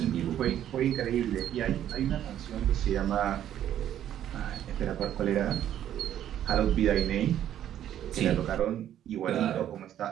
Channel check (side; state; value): left; quieter; 11.0 dB